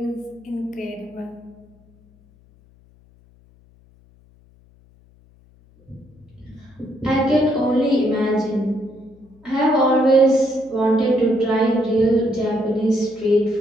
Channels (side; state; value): left; noise; hum, 29 dB below the sound